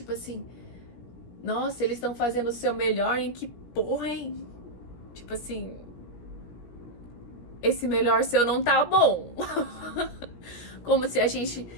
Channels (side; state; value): right; late; 17 ms